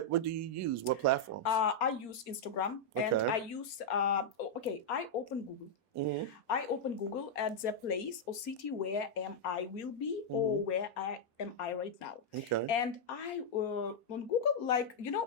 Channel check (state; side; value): late; right; 4.3 ms